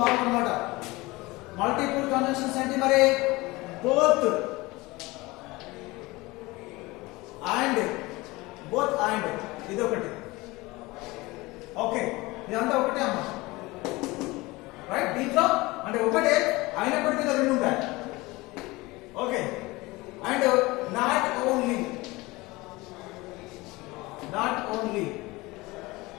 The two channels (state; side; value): quieter; right; 21.8 dB